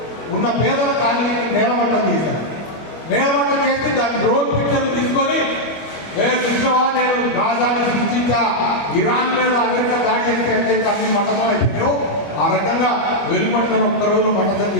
ఉన్న పేదల కాలనీని నేలమట్టం చేశారు. నేలమట్టం చేసి దాని డ్రోన్ పిక్చర్లు తీసుకొని నేను గాజాను సృష్టించా, ఇరాన్ మీద అమెరికా దాడి చేస్తే ఎట్లయితే అన్ని మట్టం అయిపోయాయో ఆ రకంగా వెలుపడిన ఒక్కరోజు మట్టం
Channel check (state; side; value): late; right; 25 ms